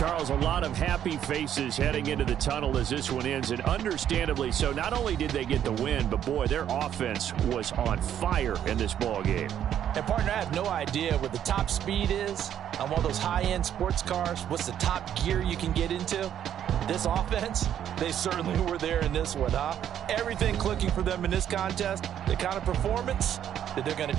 a lot of happy faces heading into the tunnel as this one ends, and understandably so. Not only did they get the win, but boy, their offense was on fire in this ball game. And partner, I have no idea what the top speed is on one of those high-end sports cars. What's the top gear you can get into? This offense, they certainly were there in this one, huh? Everything clicking for them in this contest, the kind of performance that they're going to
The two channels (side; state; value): left; quieter; 10.1 dB